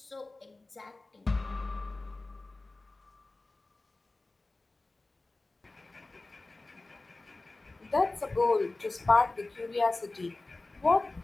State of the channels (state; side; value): quieter; right; 3.1 dB